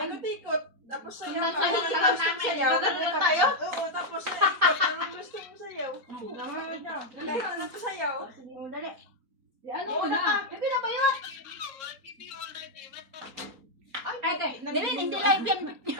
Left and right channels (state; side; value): late; left; 4.3 ms